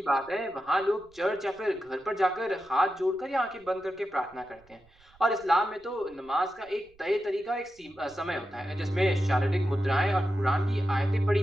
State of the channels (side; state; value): right; noise; rumble, 30 dB below the sound